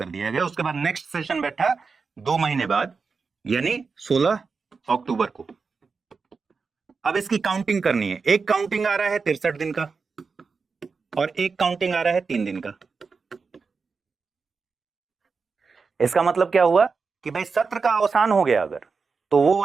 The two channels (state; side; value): quieter; left; 4.9 dB